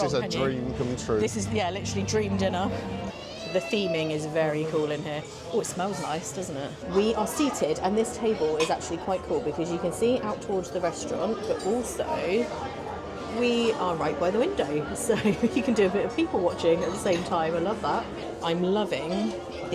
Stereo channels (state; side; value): identical; both; correlation 1.00